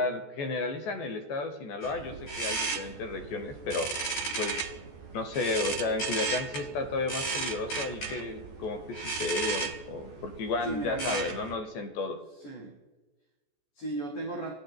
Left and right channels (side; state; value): right; late; 14 ms